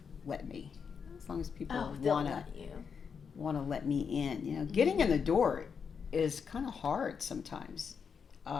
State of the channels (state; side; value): quieter; right; 6.4 dB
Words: let me, as long as people Oh, they'll want to let you. let me in. You know, getting in the door is kind of hard sometimes.